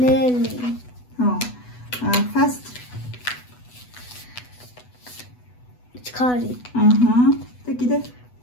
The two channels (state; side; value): late; right; 8.1 ms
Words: ხო. Fast. ჩქარი. აჰა. და კიდე?